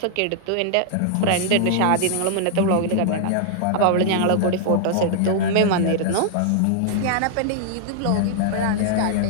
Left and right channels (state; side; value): different; both; correlation -0.01